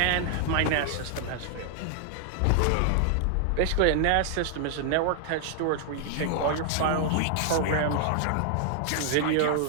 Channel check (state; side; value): different; both; correlation 0.00